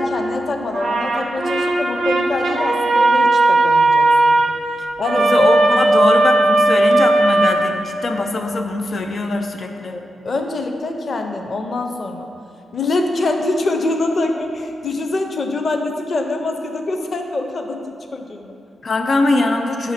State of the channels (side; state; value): both; normal; correlation 0.88